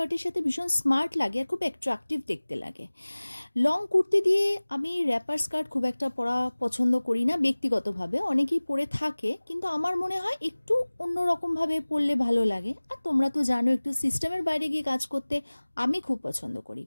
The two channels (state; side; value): inverted; both; correlation -1.00